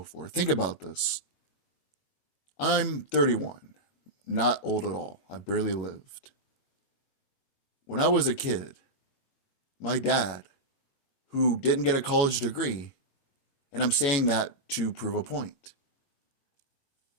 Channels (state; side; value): late; right; 21 ms